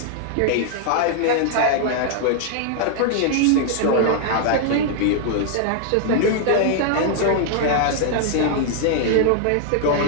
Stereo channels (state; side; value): different; both; correlation -0.01